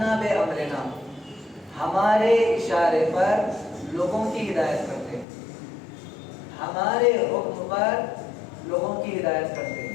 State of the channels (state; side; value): drops out; right; at 5.2 s